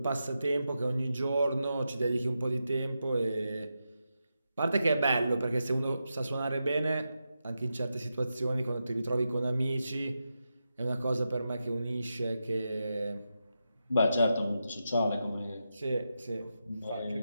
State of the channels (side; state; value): both; inverted; correlation -0.88